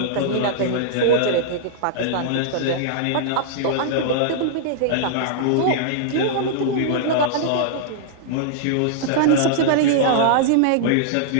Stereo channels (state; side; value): different; both; correlation -0.02